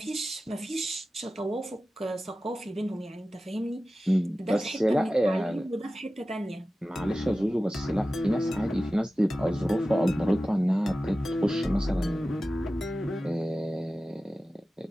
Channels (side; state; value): both; normal; correlation 0.95